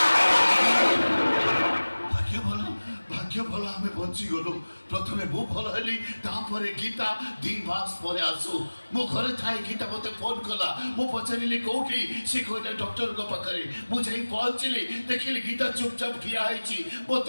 भाग्य भल आमे बंची गलो प्रथमे मु भल हली तापरे गीता 2 मास परे आसु मो घरे थाई गीता मते फोन कला मु पचारिली कोठी से कोटा डॉक्टर को पाखरे मु जाई पहुंचली देखिली गीता चुपचाप खिया आइची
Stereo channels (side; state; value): both; inverted; correlation -1.00